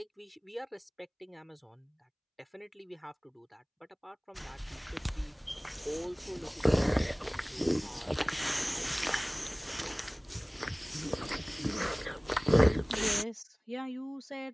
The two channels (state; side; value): identical; both; correlation 1.00